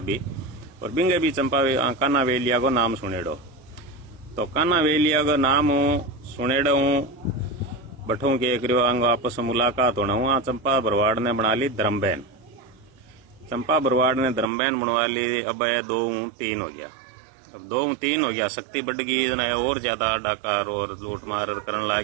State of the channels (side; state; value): left; drops out; at 14.5 s